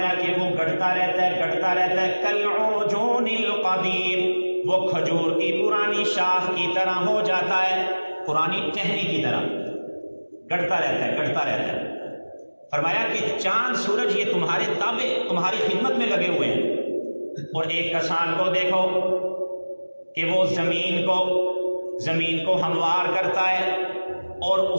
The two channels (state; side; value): inverted; both; correlation -1.00